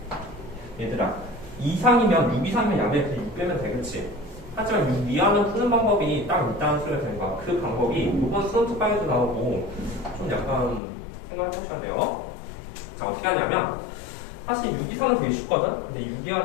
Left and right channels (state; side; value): drops out; right; at 10.8 s